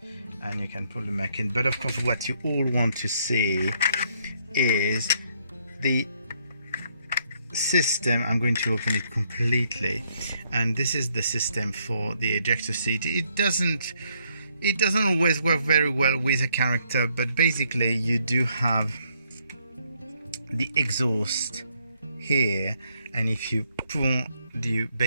and you can pull them back in. But of course, what you all want to see is the system. I'm going to open it completely, and this is the system for the ejector seat. It doesn't always work very well with a character, but basically you do have the exhaust here, and if you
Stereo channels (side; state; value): both; inverted; correlation -0.71